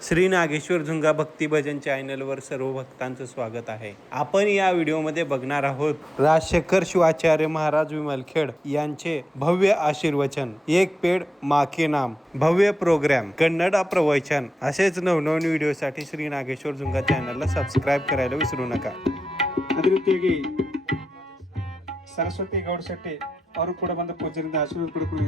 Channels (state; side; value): normal; both; correlation 0.90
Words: श्री नागेश्वर झुंगा भक्ती भजन चॅनलवर सर्व भक्तांचं स्वागत आहे. आपण या व्हिडिओमध्ये बघणार आहोत राजशेखर शिवाचार्य महाराज विमलखेड यांचे भव्य आशीर्वचन, एक पेड माँ के नाम, भव्य प्रोग्राम, कन्नड प्रवचन. असेच नवनवीन व्हिडिओसाठी श्री नागेश्वर झुंगा चॅनलला सबस्क्राईब करायला विसरू नका. ಅದೇ ರೀತಿಯಾಗಿ ಸರಸ್ವತಿ ಗೌಡ ಶೆಟ್ಟಿ ಅವರು ಕೂಡ ಬಂದ ಪೂಜೆಯಿಂದ ಆಶೀರ್ವಾದ ಪಡ್ಕೊಳ್ಳಿ